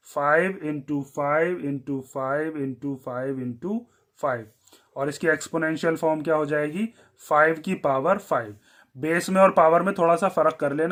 5 इंटू 5 इंटू 5 इंटू 5 इंटू 5। और इसकी एक्सपोनेंशियल फॉर्म क्या हो जाएगी, 5 की पावर 5। बेस में और पावर में थोड़ा सा फर्क कर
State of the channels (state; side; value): identical; both; correlation 1.00